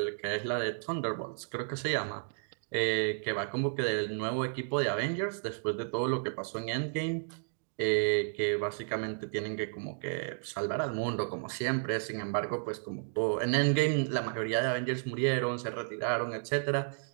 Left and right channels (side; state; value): left; silent; digital silence